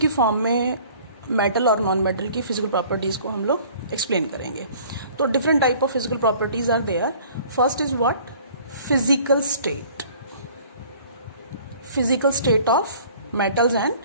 form में metal और non-metal की physical properties को हम लोग explain करेंगे. तो different type of physical properties are there. First is what? Physical state. Physical state of metals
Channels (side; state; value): both; inverted; correlation -0.52